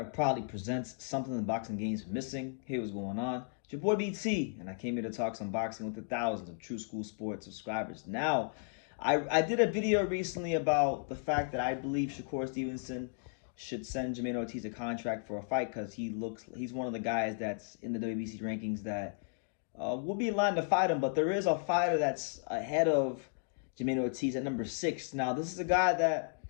proudly presents something the boxing game's missing. Hey, what's going on? It's your boy BT, and I came here to talk some boxing with the thousands of True School Sports subscribers. Now, I did a video recently about the fact that I believe Shakur Stevenson should send Jermaine Ortiz a contract for a fight because he's one of the guys that's in the WBC rankings that will be in line to fight him. But there is a fighter that's ahead of Jermaine Ortiz at number 6. Now, this is a guy that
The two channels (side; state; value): right; silent; digital silence